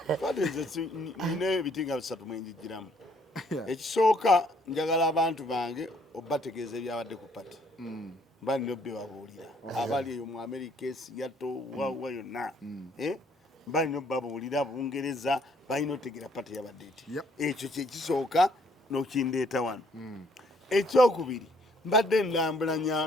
nina ebiti nga bisatu mwenjigiramu ekisooka njagala abantu bange obategeeza ebyabadde ku pate mba nina obbe babuulira abali eyo mu America Seattle wa yonna mba nina obbabuulira Bungereza balina otegera pate yabadde eti ekyo kyekisooka n'okindeeta wano ekyokubiri mbadde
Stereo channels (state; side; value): normal; both; correlation 0.64